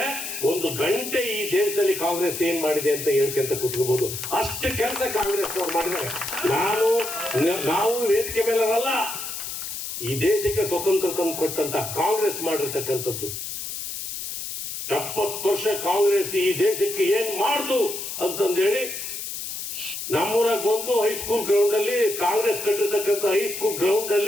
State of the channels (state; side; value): noise; left; hiss, 6 dB below the sound